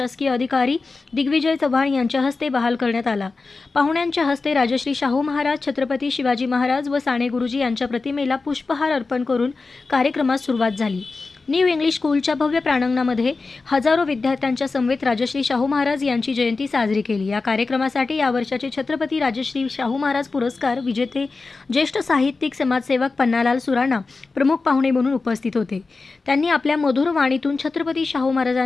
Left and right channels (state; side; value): quieter; right; 3.9 dB